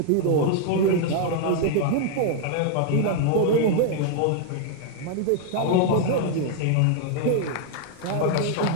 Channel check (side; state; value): both; different; correlation 0.00